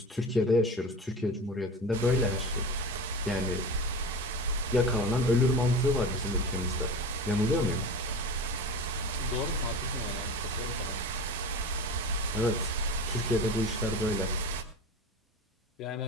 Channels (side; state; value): both; normal; correlation 0.31